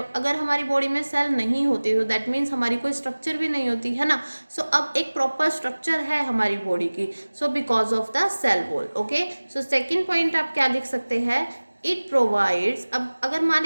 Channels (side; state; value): both; inverted; correlation -1.00